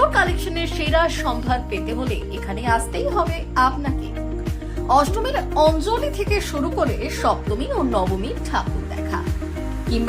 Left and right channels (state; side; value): identical; both; correlation 1.00